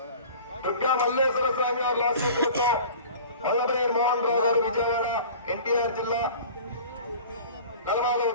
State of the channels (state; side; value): inverted; both; correlation -0.42